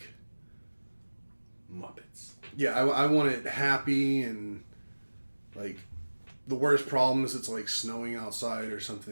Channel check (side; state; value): both; inverted; correlation -1.00